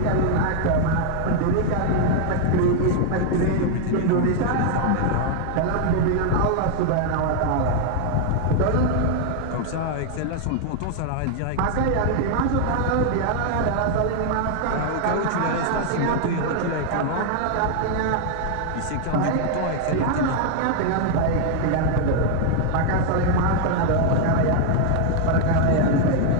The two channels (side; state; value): both; different; correlation 0.00